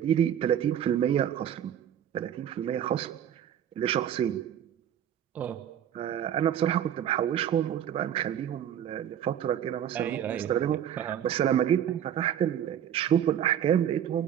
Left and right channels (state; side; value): quieter; left; 9.9 dB